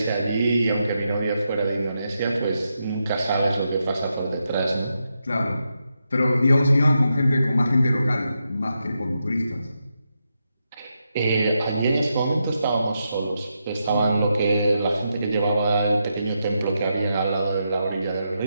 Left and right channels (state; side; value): inverted; both; correlation -0.85